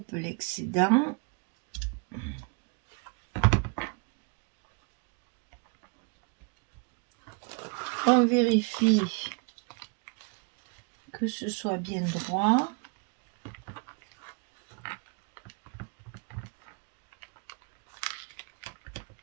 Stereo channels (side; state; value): left; quieter; 33.8 dB